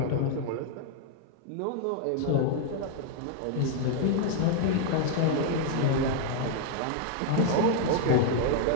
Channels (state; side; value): different; both; correlation 0.00